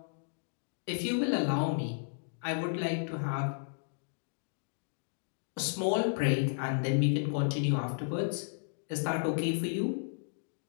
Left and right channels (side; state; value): right; silent; digital silence